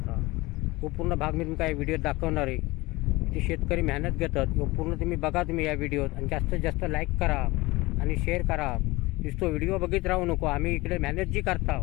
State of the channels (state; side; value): quieter; right; 21.5 dB